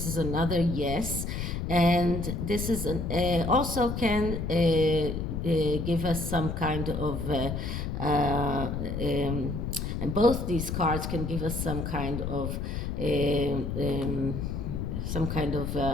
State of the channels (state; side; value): noise; left; rumble, 3 dB below the sound